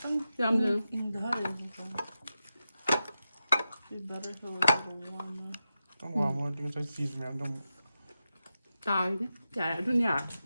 Yum yum. In the hut be better if it was a little warmer. tong wa mo ting sai cheese me dong Tài đi. Dạ, du nhà.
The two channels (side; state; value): both; inverted; correlation -0.90